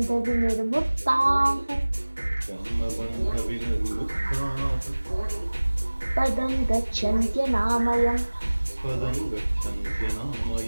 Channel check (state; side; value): inverted; both; correlation -1.00